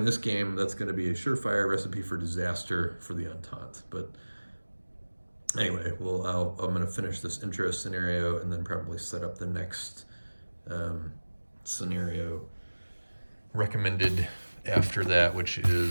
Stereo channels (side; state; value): both; inverted; correlation -1.00